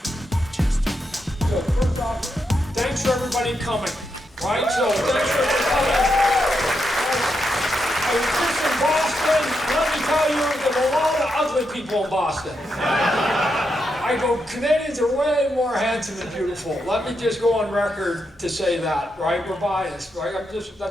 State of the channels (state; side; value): normal; both; correlation 0.83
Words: first off, thanks for everybody coming, right? So thanks for everybody coming. I was just in Boston. Let me tell you, there were a lot of ugly people in Boston. I go, Canadians are way more handsome and beautiful. Let me just go on record to say that, right? We're biased, right?